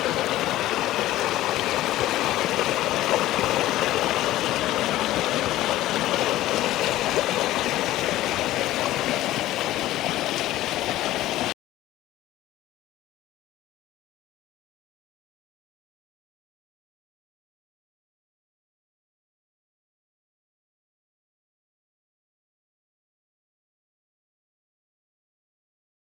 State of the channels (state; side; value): quieter; right; 15.2 dB